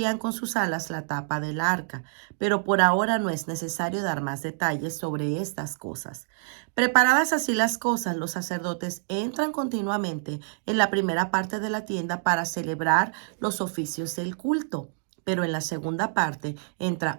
con sus alas la tapa del arca. Pero por ahora no es necesario dar más detalles sobre estas cosas. Preparadas así las cosas, los sacerdotes entran continuamente en la primera parte de la tienda para celebrar los oficios del culto. Pero en la segunda parte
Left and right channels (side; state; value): left; silent; digital silence